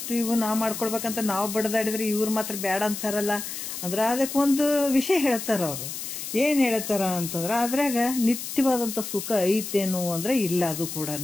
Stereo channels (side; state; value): left; noise; hiss, 7 dB below the sound